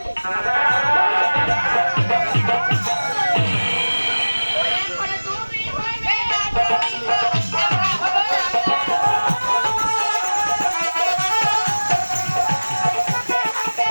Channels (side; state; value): both; inverted; correlation -1.00